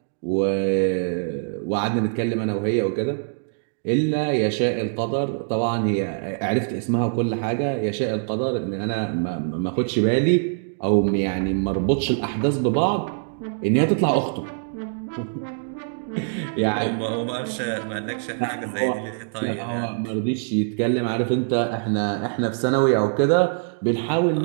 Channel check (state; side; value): silent; left; digital silence